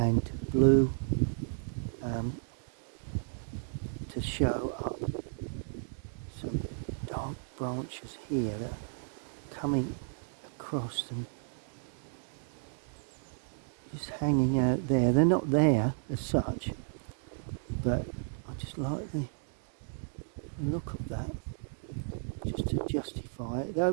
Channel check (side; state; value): left; silent; digital silence